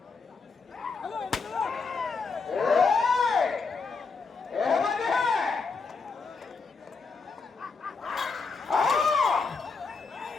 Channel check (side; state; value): right; quieter; 4.6 dB